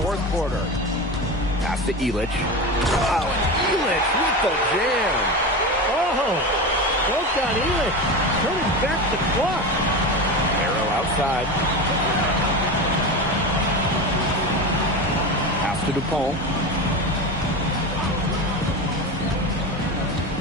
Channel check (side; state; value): both; normal; correlation 0.24